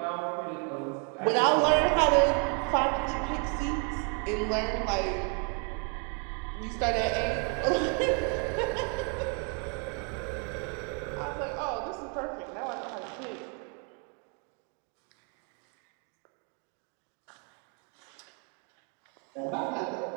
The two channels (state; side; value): quieter; left; 38.4 dB